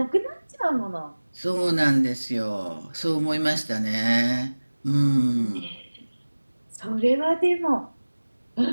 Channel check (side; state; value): both; inverted; correlation -1.00